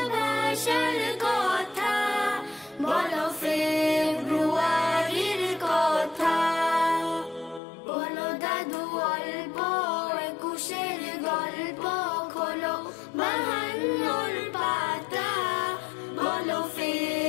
ভাষার কথা, বলো ফেব্রুয়ারির কথা। বলো দাদু অল্প একুশের গল্প খোলো 52 পাতা। বলো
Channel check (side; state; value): right; drops out; at 7.6 s